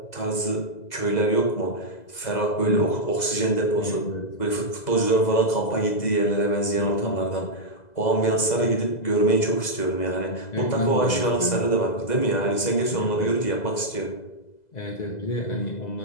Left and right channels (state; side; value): late; right; 2.0 ms